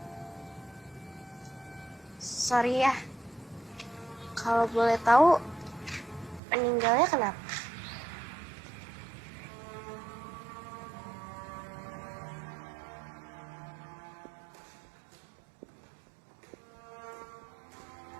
Sorry ya. Kalau boleh tahu, meninggalnya kenapa?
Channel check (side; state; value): left; drops out; at 6.4 s